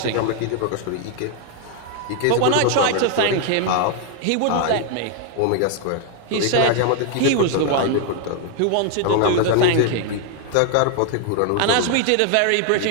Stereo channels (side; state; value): both; different; correlation 0.00